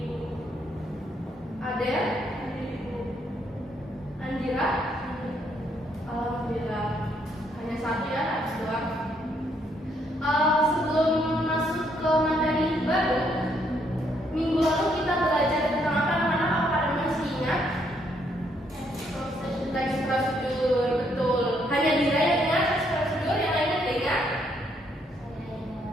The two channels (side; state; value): both; normal; correlation 0.72